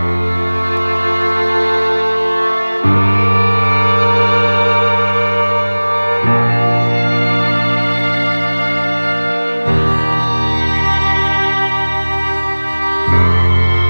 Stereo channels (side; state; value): both; inverted; correlation -1.00